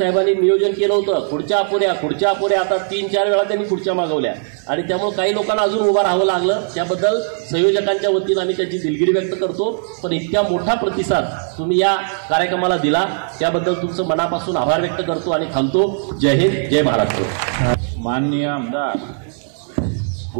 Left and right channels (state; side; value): silent; left; digital silence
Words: नियोजन केलं होतं. खुर्च्या अपुऱ्या आता 3-4 वेळा त्यांनी खुर्च्या मागवल्या आणि त्यामुळे काही लोकांना अजून उभं राहावं लागलं. त्याबद्दल संयोजकांच्या वतीनं आम्ही त्याची दिलगिरी व्यक्त करतो. पण इतक्या मोठा प्रतिसाद तुम्ही या कार्यक्रमाला दिला त्याबद्दल तुमचं मनापासून आभार व्यक्त करतो आणि थांबतो. जय हिंद, जय महाराष्ट्र. माननीय आमदार